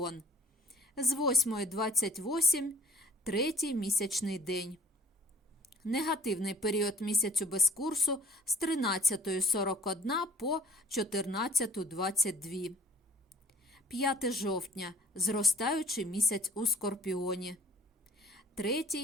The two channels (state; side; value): normal; both; correlation 0.53